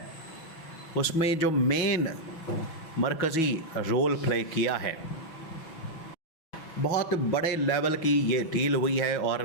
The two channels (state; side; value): late; right; 6.1 ms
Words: उसमें जो मेन मरकज़ी रोल प्ले किया है, बहुत बड़े लेवल की ये डील हुई है और